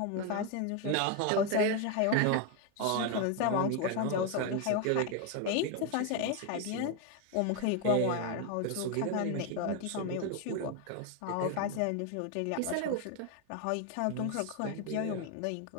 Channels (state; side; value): different; both; correlation 0.01